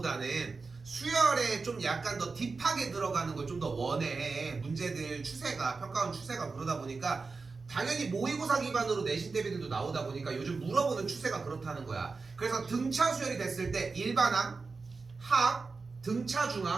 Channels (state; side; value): quieter; left; 4.3 dB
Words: 수열에 좀 약간 더 딥하게 들어가는 걸 좀 더 원해. 문제들 추세가 평가원 추세가 그러다 보니까 당연히 모의고사 기반으로 내신 대비들도 나오다 보니까 요즘 물어보는 추세가 그렇다는 거야. 그래서 등차 수열이 됐을 때 일반항, 합, 등차